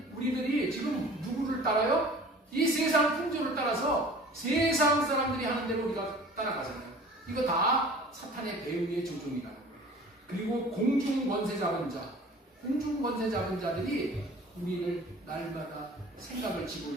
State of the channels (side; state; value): both; normal; correlation 0.45